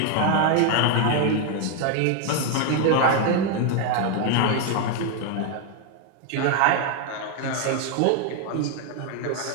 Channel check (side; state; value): both; different; correlation 0.01